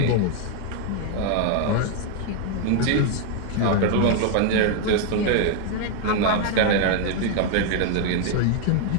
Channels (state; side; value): different; both; correlation 0.00